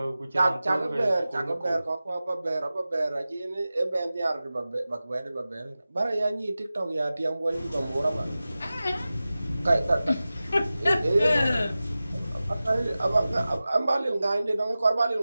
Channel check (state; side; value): inverted; both; correlation -0.95